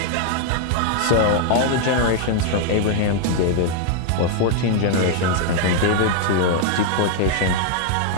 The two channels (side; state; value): both; different; correlation 0.00